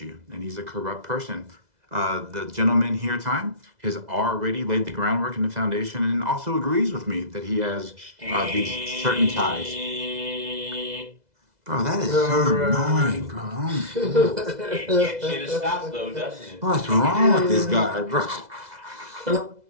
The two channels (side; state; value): left; late; 2.0 ms